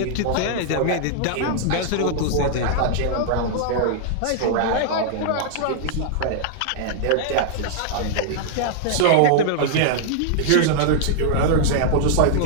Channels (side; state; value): both; different; correlation -0.01